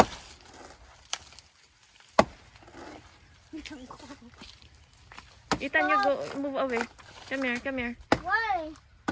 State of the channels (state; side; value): identical; both; correlation 1.00